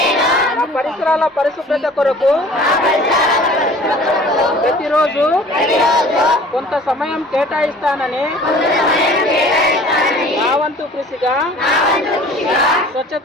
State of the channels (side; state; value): both; normal; correlation 0.47